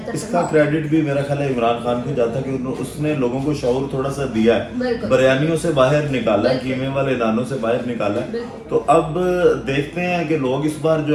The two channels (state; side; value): identical; both; correlation 1.00